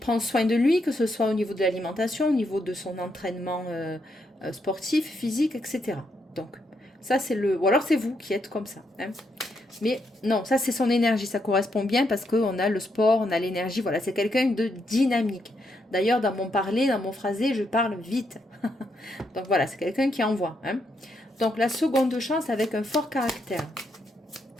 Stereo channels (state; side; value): normal; both; correlation 0.78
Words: soin de lui, que ce soit au niveau de l'alimentation, au niveau de son entraînement sportif, physique, etc. Donc, ça c'est le... Ou alors c'est vous qui êtes comme ça. Hein. Mais non, ça c'est son énergie, ça correspond bien parce qu'on a le sport, on a l'énergie, voilà, c'est quelqu'un de dynamique. D'ailleurs, dans mon parler, dans mon phrasé, je parle vite. Donc voilà, c'est quelqu'un qui envoie. Hein. Donc la seconde chance avec un fort caractère.